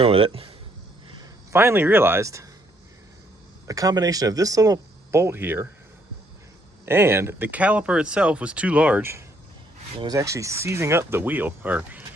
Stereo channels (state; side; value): normal; both; correlation 0.69